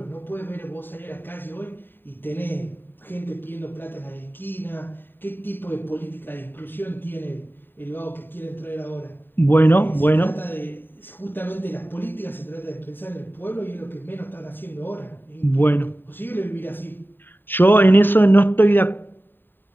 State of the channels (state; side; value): late; right; 0.094 ms